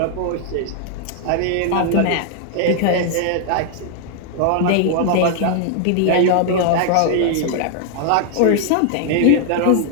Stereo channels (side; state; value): both; different; correlation 0.00